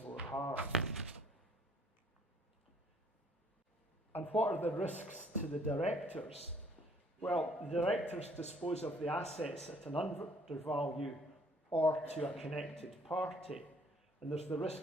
more harm. And what are the risks to the directors? Well, the directors dispose of the assets at an undervalue or to a connected party, and there's the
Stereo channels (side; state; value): both; normal; correlation 0.60